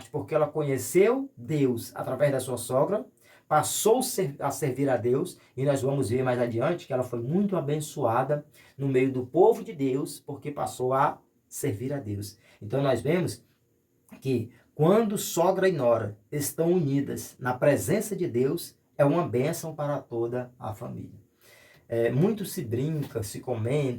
porque ela conheceu Deus através da sua sogra, passou a servir a Deus, e nós vamos ver mais adiante que ela foi muito abençoada no meio do povo de Deus, porque passou a servir a Deus. Então nós vemos que quando sogra e nora estão unidas na presença de Deus, é uma bênção para toda a família. Muito se brinca, se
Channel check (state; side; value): identical; both; correlation 1.00